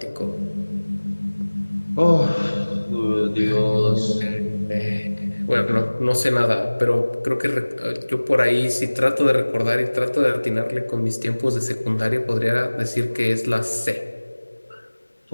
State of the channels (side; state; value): both; inverted; correlation -1.00